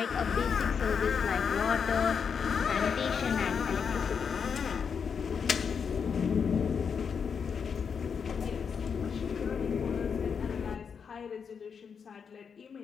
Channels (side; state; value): right; quieter; 6.5 dB